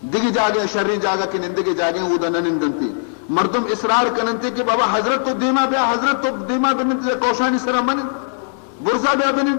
دیگه جاگه شر جاگه که نندگه جاگه او دا ننندنتی مردم اصرار کننتی که بابا حضرت تو دیما بیا حضرت تو دیما بننتی کوشانی سرا منن برزا بیا بنن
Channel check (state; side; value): silent; right; 62 dB below the other